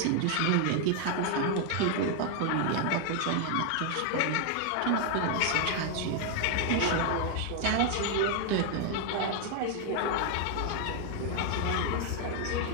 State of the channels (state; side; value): different; both; correlation 0.00